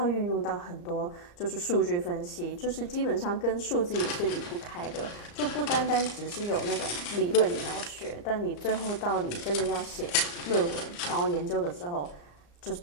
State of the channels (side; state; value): right; late; 34 ms